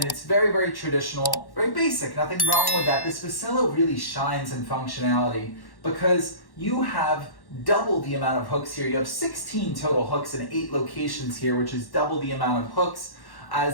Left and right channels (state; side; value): late; right; 1.1 ms